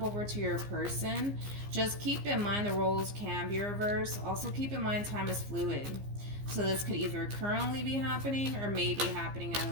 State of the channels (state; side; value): late; left; 15 ms